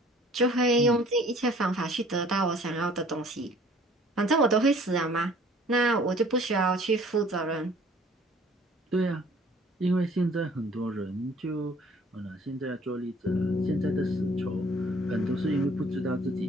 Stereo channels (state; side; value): normal; both; correlation 0.53